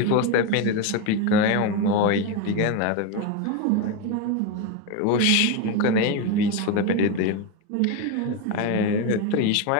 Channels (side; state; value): both; different; correlation 0.03